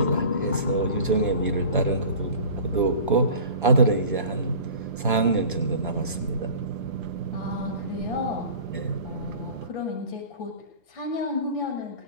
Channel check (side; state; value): both; inverted; correlation -0.40